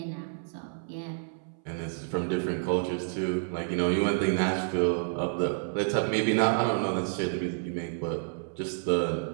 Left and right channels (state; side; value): silent; left; 58 dB below the other